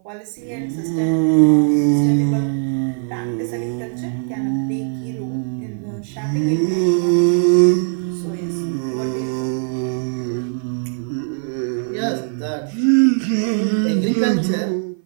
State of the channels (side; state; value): left; silent; 56 dB below the other